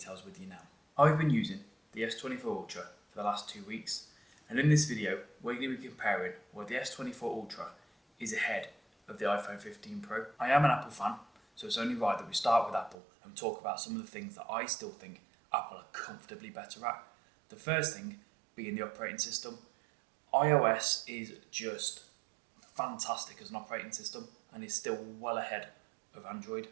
with you now. I've been using the S24 Ultra for the last 2 weeks, and in this video we're going to be comparing where the S24 Ultra is ahead of the iPhone 15 Pro. I am an Apple fan, so it's only right that we start with Apple and talk about some of the things that I still think Apple are comfortably better at. The first thing being the operating system. iOS is just fantastic as an operating system and is still well ahead of Android.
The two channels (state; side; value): drops out; left; at 13.0 s